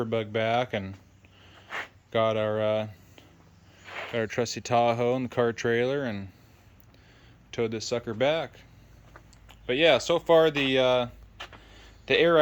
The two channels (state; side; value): identical; both; correlation 1.00